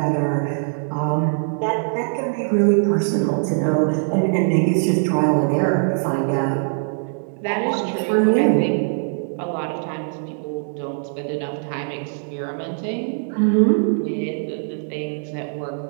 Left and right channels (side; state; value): left; silent; digital silence